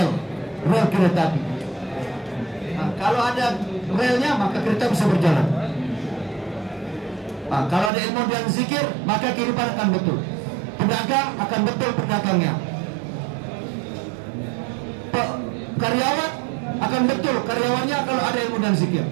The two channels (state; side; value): drops out; left; at 7.9 s